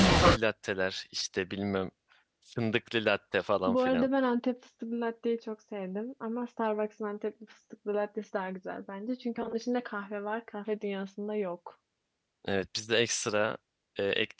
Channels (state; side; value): identical; both; correlation 1.00